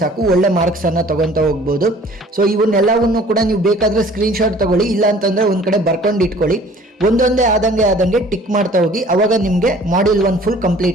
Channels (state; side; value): normal; both; correlation 0.51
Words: ಸಾಕು, ಒಳ್ಳೆ ಮಾರ್ಕ್ಸನ್ನು ತೊಗೊತಾ ಹೋಗ್ಬೋದು. ಸೊ ಇವನ್ನೆಲ್ಲವನ್ನು ಕೂಡ ನೀವು ಬೇಕಾದರೆ ಸ್ಕ್ರೀನ್ಶಾಟ್ ತೊಗೊಳ್ಳಿ, ಇಲ್ಲ ಅಂತಂದರೆ ಒಂದು ಕಡೆ ಬರ್ಕೊಂಡು ಇಟ್ಕೊಳ್ಳಿ. ಒಂದೊಂದೇ ಆದಂಗೆ ಟಿಕ್ ಮಾಡ್ತಾ ಹೋಗಿ, ಅವಾಗ ನಿಮಗೆ ಮಾಡ್ಯೂಲ್ 1 ಫುಲ್